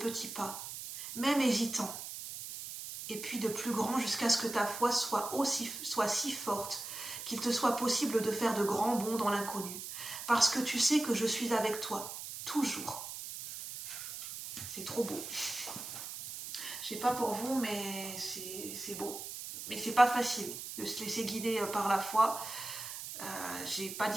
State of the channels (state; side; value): noise; right; hiss, 8 dB below the sound